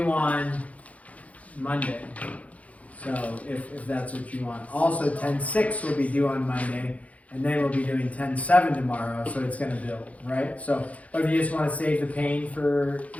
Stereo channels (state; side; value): late; right; 0.068 ms